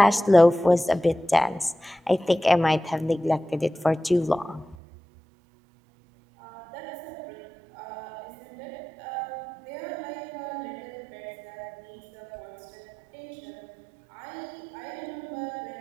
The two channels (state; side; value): drops out; left; at 4.8 s